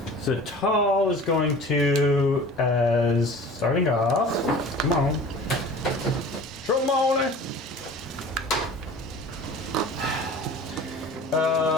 So tall is going to, as starting off, come on. Tromone.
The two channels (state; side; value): normal; both; correlation 0.42